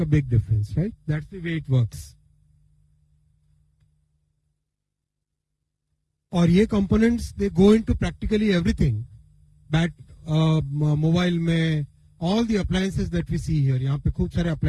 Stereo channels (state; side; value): identical; both; correlation 1.00